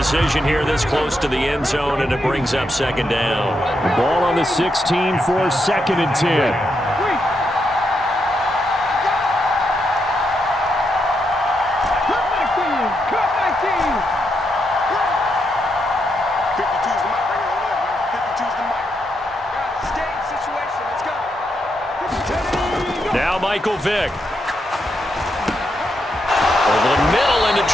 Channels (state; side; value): normal; both; correlation 0.81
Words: here this close to the end zone, and it brings up second down. Ball on the 16 for 2nd and 10. Now Michael Vick. Over the middle into